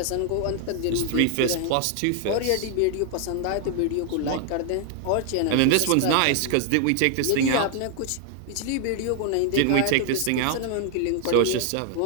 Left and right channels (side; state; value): both; different; correlation 0.00